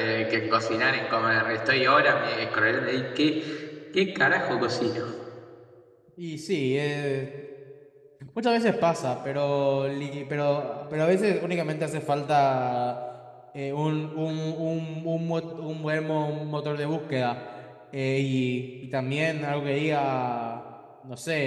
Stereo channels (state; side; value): identical; both; correlation 1.00